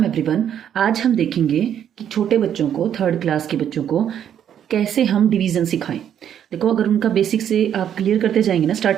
एवरीवन। आज हम देखेंगे कि छोटे बच्चों को, थर्ड क्लास के बच्चों को कैसे हम डिवीज़न सिखाएं। देखो, अगर उनका बेसिक से आप क्लियर करते जाएंगे ना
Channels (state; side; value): quieter; left; 9.5 dB